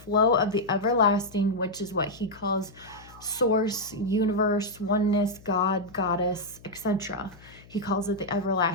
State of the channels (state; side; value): noise; left; hum, 23 dB below the sound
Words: of the everlasting, which is what he calls source, universe, oneness, God, goddess, etc. He calls it the